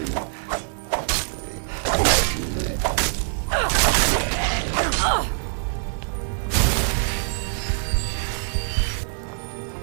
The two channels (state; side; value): silent; left; digital silence